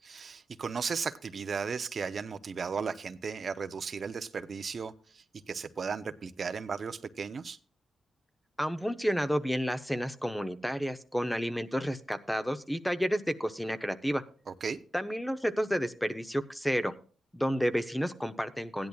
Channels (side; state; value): both; normal; correlation 0.95